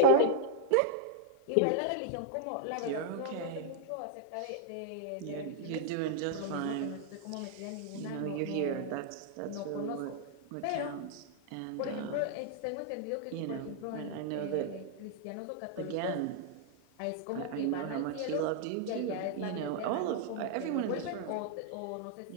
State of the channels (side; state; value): both; different; correlation 0.00